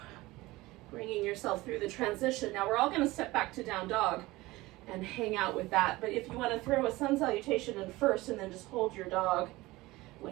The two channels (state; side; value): quieter; left; 19.8 dB